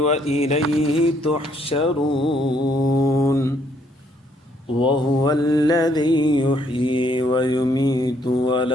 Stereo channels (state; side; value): normal; both; correlation 0.69